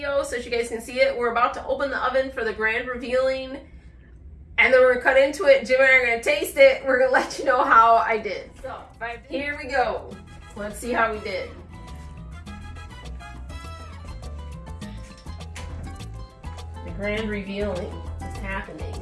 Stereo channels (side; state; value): both; identical; correlation 1.00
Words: so that you guys can see it. We're about to open the oven for the grand revealing. And then we're gonna cut into it. Jim and I are gonna taste it. We're gonna let you know how I did. So here we go. Let's see how we did. The grand revealing is happening.